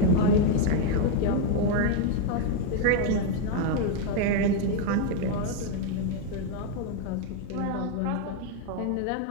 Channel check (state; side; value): different; both; correlation 0.01